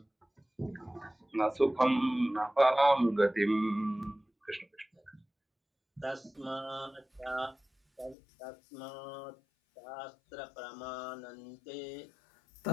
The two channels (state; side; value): drops out; right; at 8.2 s